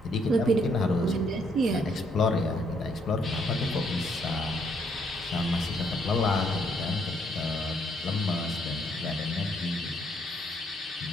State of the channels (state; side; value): normal; both; correlation 0.71